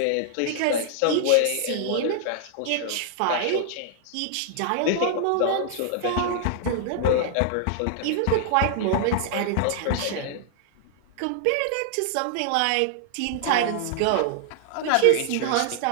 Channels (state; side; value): different; both; correlation -0.01